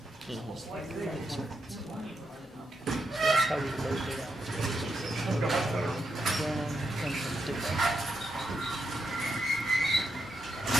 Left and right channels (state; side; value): normal; both; correlation 0.83